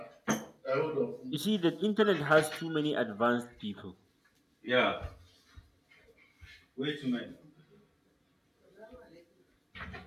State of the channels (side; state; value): both; identical; correlation 1.00